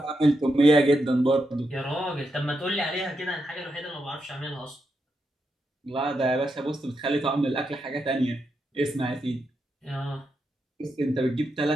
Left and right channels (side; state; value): both; normal; correlation 0.84